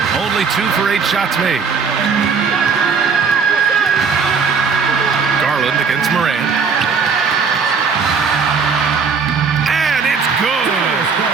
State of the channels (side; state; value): left; quieter; 5.6 dB